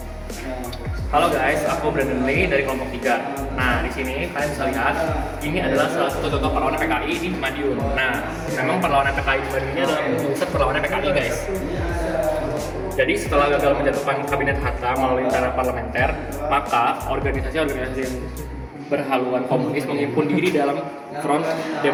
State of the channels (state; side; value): identical; both; correlation 1.00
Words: Halo guys, aku Brandon Lee dari kelompok 3. Nah, di sini kalian bisa lihat ini adalah salah satu contoh perlawanan PKI di Madiun. Nah, memang perlawanan PKI di Madiun ini adalah pusat perlawanan PKI guys. Jadi setelah gagal menjatuhkan kabinet Hatta melalui cara parlementer, maka organisasi-organisasi yang berhaluan komunis menghimpun diri dalam Front